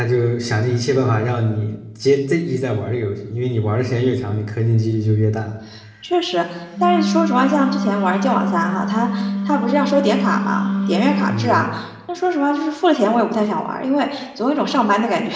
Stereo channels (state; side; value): identical; both; correlation 1.00